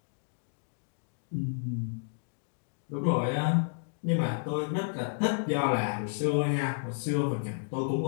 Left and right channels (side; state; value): right; silent; digital silence